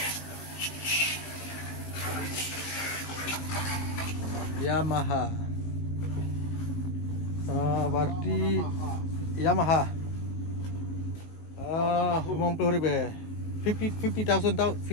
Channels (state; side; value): late; right; 19 ms